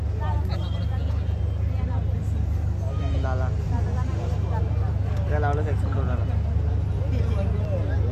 लाला काय लावलं सेक्शन कोणाला.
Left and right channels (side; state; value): both; identical; correlation 1.00